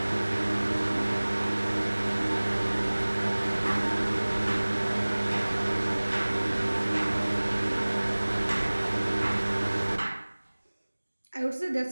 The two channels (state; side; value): inverted; both; correlation -1.00